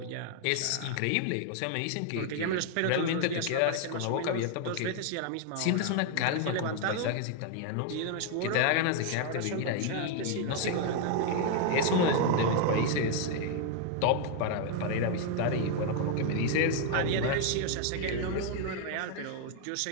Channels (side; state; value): both; different; correlation 0.00